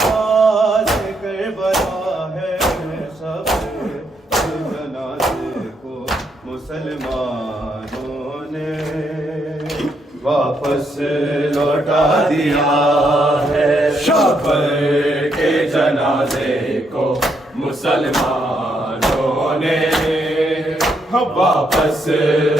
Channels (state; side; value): normal; both; correlation 0.76